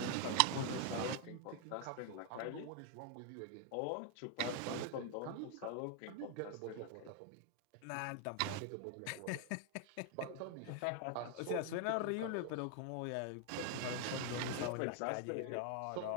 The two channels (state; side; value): different; both; correlation 0.00